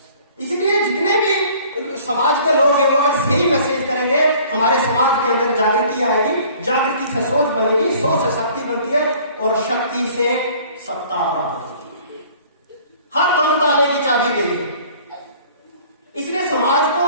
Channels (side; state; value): both; inverted; correlation -0.52